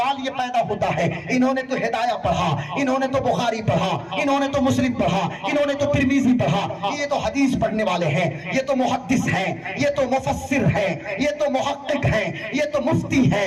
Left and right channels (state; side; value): identical; both; correlation 1.00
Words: یہ پیدا ہوتا ہے, انہوں نے تو ہدایہ پڑھا, انہوں نے تو بخاری پڑھا, انہوں نے تو مسلم پڑھا, انہوں نے تو ترمذی پڑھا, یہ تو حدیث پڑھنے والے ہیں, یہ تو محدث ہیں, یہ تو مفسر ہیں, یہ تو محقق ہیں, یہ تو مفتی ہیں,